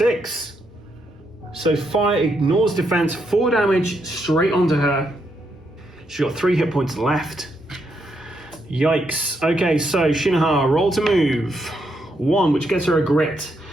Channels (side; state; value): both; normal; correlation 0.79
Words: So fire ignores defense. 4 damage straight onto her. She's got 3 hit points left. Yikes. Okay, so Shi No Ha, roll to move. 1, which gets her a grit.